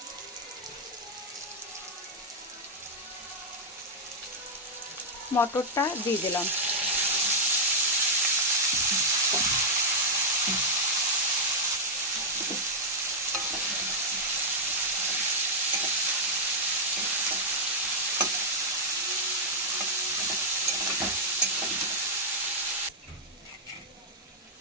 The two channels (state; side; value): normal; both; correlation -0.04